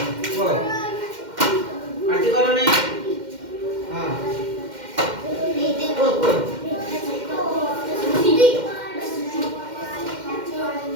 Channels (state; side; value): late; left; 2.1 ms